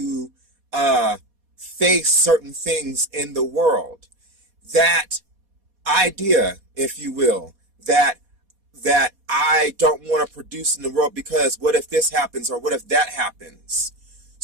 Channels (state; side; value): late; left; 4.2 ms